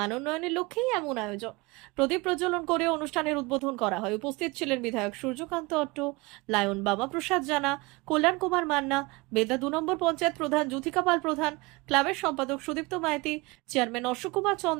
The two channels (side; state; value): left; quieter; 24.2 dB